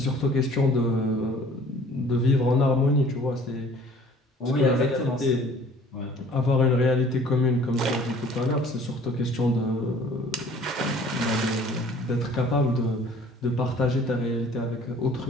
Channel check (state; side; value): normal; both; correlation 0.52